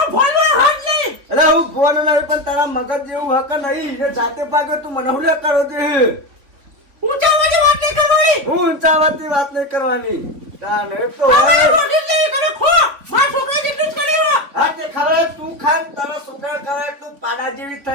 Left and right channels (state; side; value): late; left; 3.8 ms